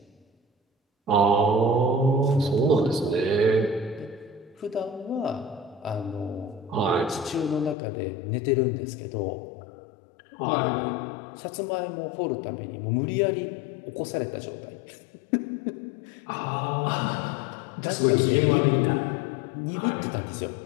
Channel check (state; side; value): drops out; right; at 7.8 s